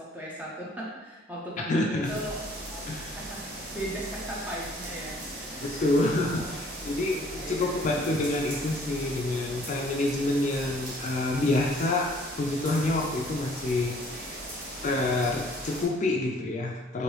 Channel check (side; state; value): both; normal; correlation 0.58